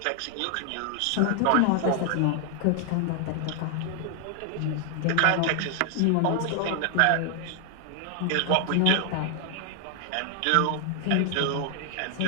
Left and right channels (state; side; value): different; both; correlation 0.00